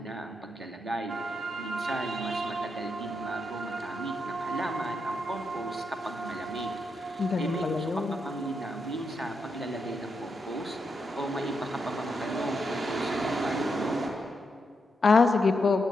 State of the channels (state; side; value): normal; both; correlation 0.83